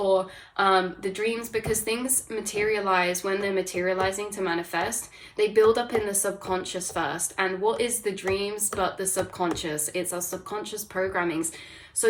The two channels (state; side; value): identical; both; correlation 1.00